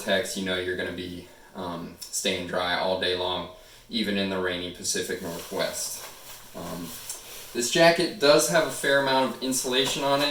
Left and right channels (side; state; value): both; identical; correlation 1.00